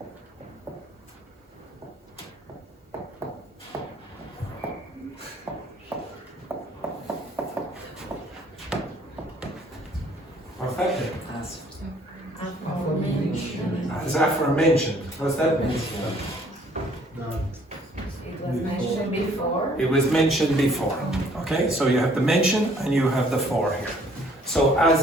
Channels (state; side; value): normal; both; correlation 0.60